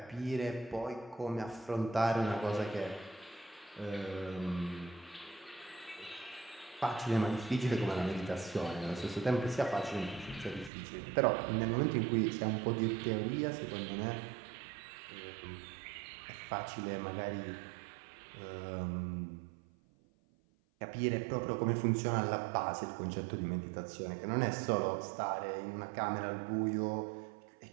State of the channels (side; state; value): left; drops out; at 10.7 s